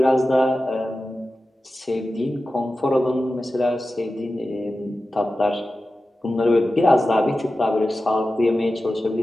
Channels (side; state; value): both; normal; correlation 0.94